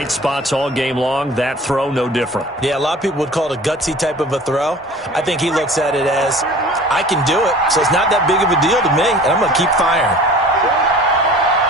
spots all game long. That throw, no different. Yeah, a lot of people would call it a gutsy type of a throw. I think he looks at it as, I can do it, so it's not that big of a deal to me, and I'm going to keep firing.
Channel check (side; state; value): both; normal; correlation 0.44